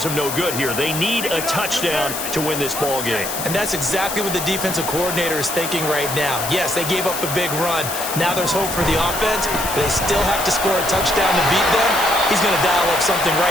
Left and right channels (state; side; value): noise; left; hiss, 6 dB below the sound